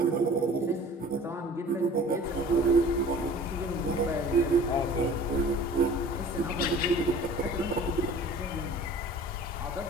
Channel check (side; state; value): both; normal; correlation 0.46